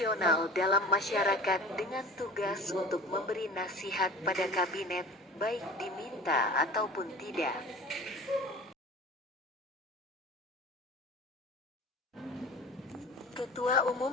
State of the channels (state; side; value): normal; both; correlation 0.39